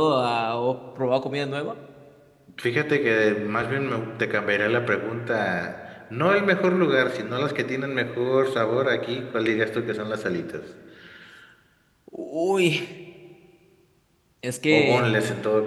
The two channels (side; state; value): both; identical; correlation 1.00